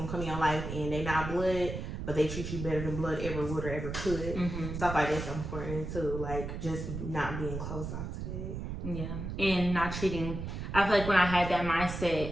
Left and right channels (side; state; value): right; noise; rumble, 6 dB below the sound